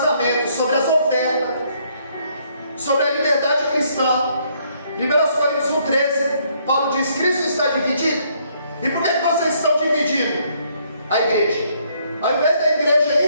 sobre as ofertas, sobre a liberdade cristã. 1 Coríntios 1,13, Paulo diz: Cristo está dividido. E por que vocês estão dividindo a igreja? Ao invés da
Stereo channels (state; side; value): inverted; both; correlation -0.69